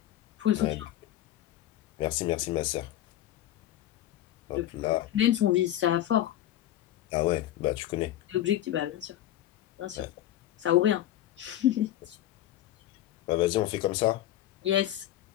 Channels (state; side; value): quieter; right; 12.9 dB